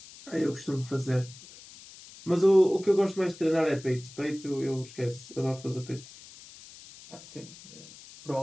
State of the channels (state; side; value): noise; left; hiss, 19 dB below the sound